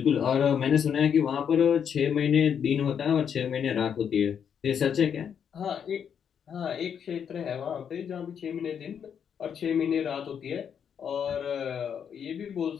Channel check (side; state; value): right; quieter; 7.8 dB